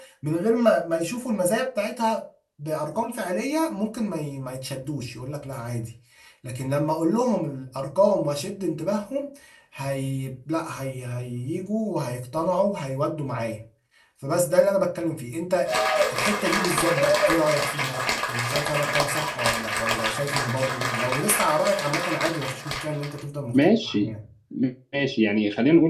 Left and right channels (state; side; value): identical; both; correlation 1.00